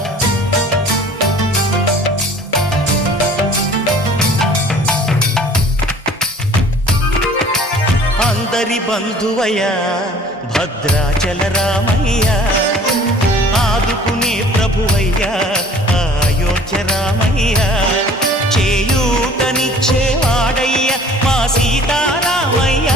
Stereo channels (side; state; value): both; normal; correlation 0.50